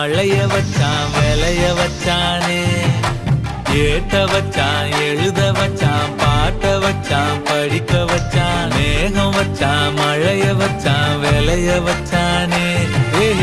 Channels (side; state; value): both; identical; correlation 1.00